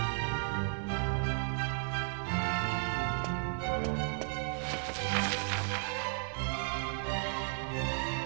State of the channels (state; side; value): silent; left; 55 dB below the other